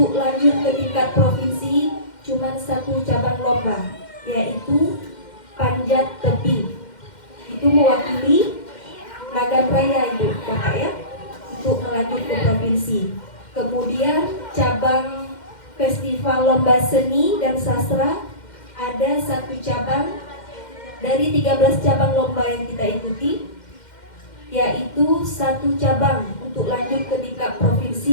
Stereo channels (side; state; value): right; late; 2.1 ms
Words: lanjut ke tingkat provinsi cuma 1 cabang lomba, yaitu panjat tebing. Itu mewakili Nagan Raya Ibu Bapak ya, untuk melanjut ke provinsi. Kemudian cabang festival lomba seni dan sastra ada 1 cabang dari 13 cabang lomba yang kita ikuti, yaitu 1 cabang untuk lanjut ke tingkat